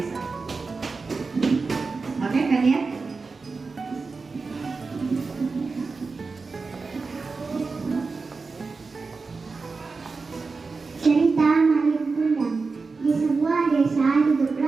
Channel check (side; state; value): left; quieter; 4.3 dB